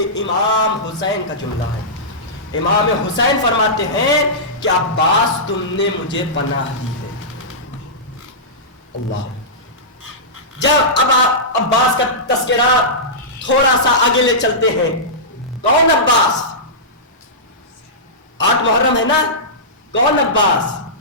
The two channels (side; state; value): both; normal; correlation -0.16